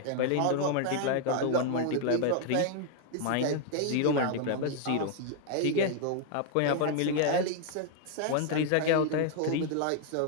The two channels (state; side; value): different; both; correlation 0.00